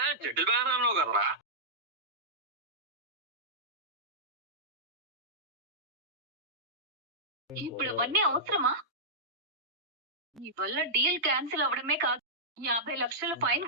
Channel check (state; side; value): normal; both; correlation -0.12